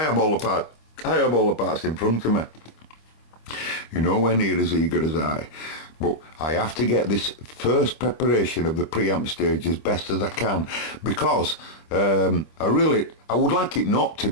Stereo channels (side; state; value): right; late; 26 ms